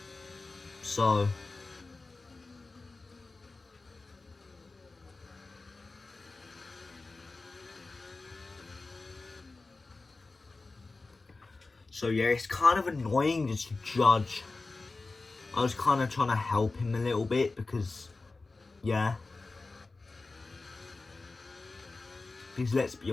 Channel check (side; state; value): right; quieter; 3.6 dB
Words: So, yeah, it's kind of annoying just to judge. I was kind of trying to help him a little bit because, yeah. Because let's be